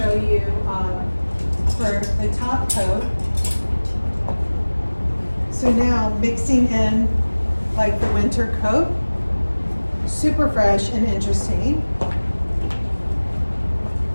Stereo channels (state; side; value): inverted; both; correlation -1.00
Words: you for the top coat. So now mixing in like the winter coat, super fresh and interesting. I